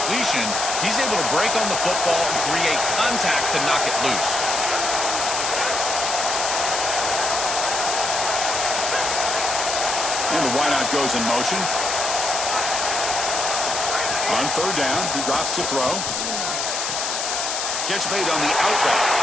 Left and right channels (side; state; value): left; noise; hiss, 2 dB below the sound